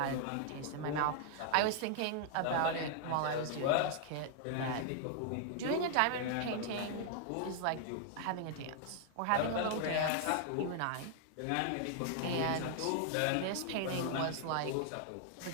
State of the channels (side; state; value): both; different; correlation 0.00